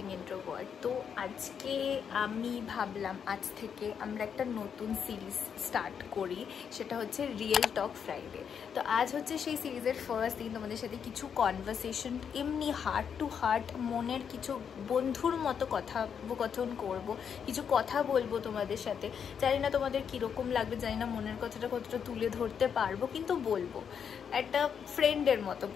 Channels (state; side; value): quieter; right; 7.4 dB